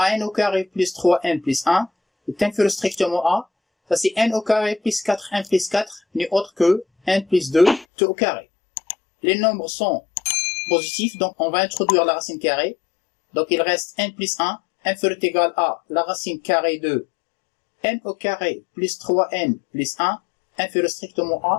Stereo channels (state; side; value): drops out; right; at 7.9 s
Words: n au carré plus 3n plus 1, est inférieur strictement à, ça c'est n au carré plus 4n plus 4, n'est autre que n plus 2 tout au carré. Les nombres sont positifs, donc on va introduire la racine carrée. Donc il reste n plus 1, inférieur ou égal à la racine carrée de n au carré plus 3n plus 1, inférieur strictement